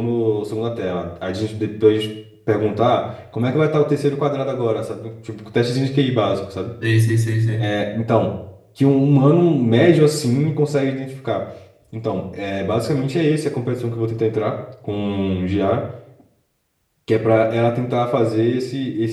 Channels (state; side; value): identical; both; correlation 1.00